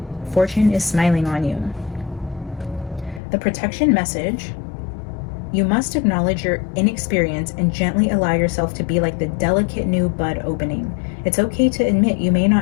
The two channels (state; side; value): drops out; right; at 3.2 s